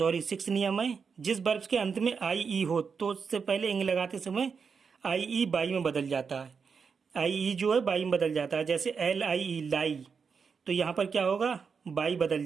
नियम है, जिस वर्ब्स के अंत में आई ई हो तो उससे पहले इंग लगाते समय आई ई बाई में बदल जाता है। आई ई जो है बाई में बदल जाता है। जैसे एल आई ई लाई, तो यहाँ पर क्या होगा, बाई बदल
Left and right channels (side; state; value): left; quieter; 5.8 dB